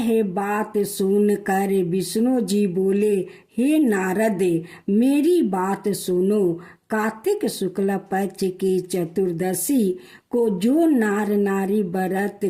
बात सुनकर विष्णु जी बोले, हे नारद, मेरी बात सुनो। कार्तिक शुक्ल पक्ष की चतुर्दशी को जो नार नारी व्रत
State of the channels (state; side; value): identical; both; correlation 1.00